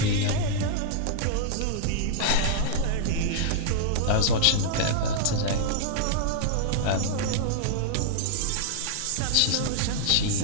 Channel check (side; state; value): both; different; correlation -0.01